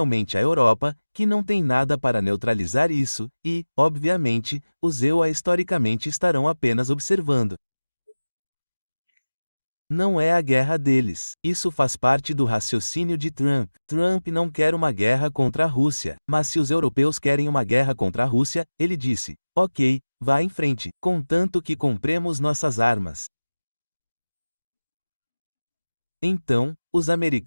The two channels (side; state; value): both; inverted; correlation -1.00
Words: a Europa, que não tem nada para neutralizar isso, e, obviamente, os EUA historicamente estarão apenas observando. Não é a guerra deles. Isso faz parte do raciocínio de Trump. Trump não quer uma guerra contra a Rússia, mas se os europeus querem uma guerra contra a Rússia, ele disse: ok, vá em frente, contanto que compremos nossas armas. Então, os